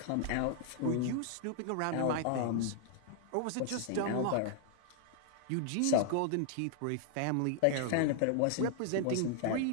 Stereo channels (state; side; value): different; both; correlation 0.00